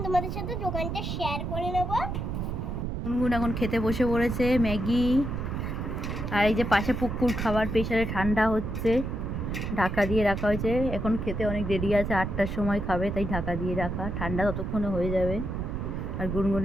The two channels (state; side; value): noise; right; rumble, 3 dB below the sound